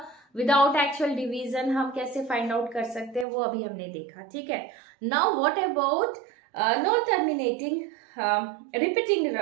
विदाउट एक्चुअल डिवीजन हम कैसे फाइंड आउट कर सकते हैं वो अभी हमने देखा, ठीक है। Now what about non terminating repeating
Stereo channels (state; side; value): drops out; left; at 3.2 s